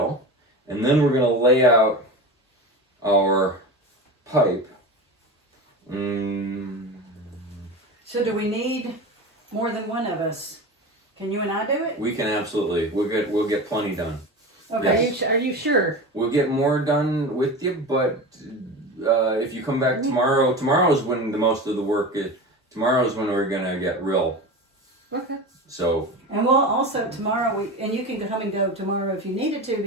and then we're going to lay out our pipe. So do we need more than one of us? Can you and I do it? We can absolutely. We'll get plenty done. Okay. Yes. Are you sure? We'll get more done with you, but if you come back tomorrow is when the most of the work is. Tomorrow is when we're going to get real. Okay. So. And we'll also tomorrow, and you can come and go tomorrow if you needed to,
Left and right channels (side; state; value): both; normal; correlation 0.28